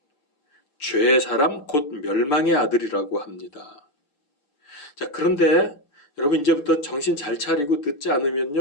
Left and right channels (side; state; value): right; late; 6.8 ms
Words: 죄의 사람 곧 멸망의 아들이라고 합니다. 자, 그런데 여러분 이제부터 정신 잘 차리고 듣지